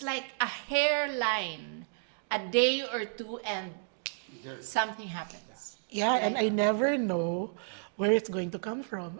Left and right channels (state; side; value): silent; left; digital silence